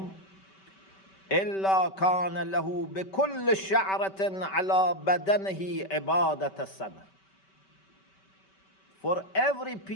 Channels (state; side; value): late; right; 5.2 ms